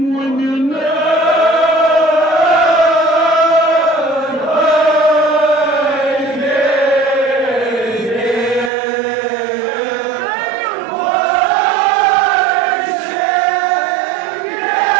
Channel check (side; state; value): left; drops out; at 8.7 s